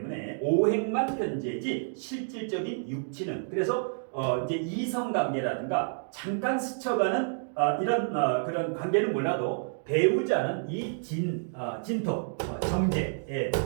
오행만 편제지 실질적인 육치는, 그래서 이제 이성관계라든가 잠깐 스쳐가는 이런 그런 관계는 몰라도 배우자는 이 진토, 정제,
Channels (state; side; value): silent; left; digital silence